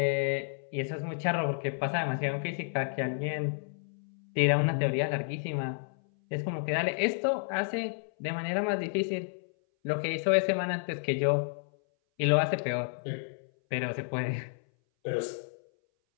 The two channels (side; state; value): right; silent; 57 dB below the other